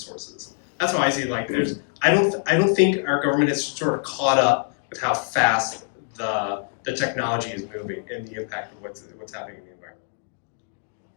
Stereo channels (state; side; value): silent; right; 62 dB below the other